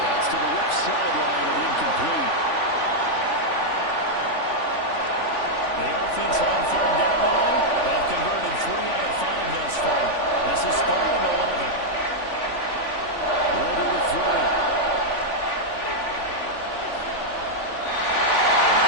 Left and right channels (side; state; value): right; late; 3.5 ms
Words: That's to the left sideline and incomplete. The offense on 3rd down today. They've converted 3 out of 5 thus far. This is 3rd and 11. Ridder to throw.